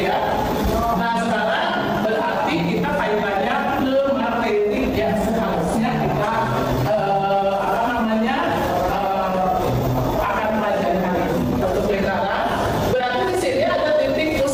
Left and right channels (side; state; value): both; identical; correlation 1.00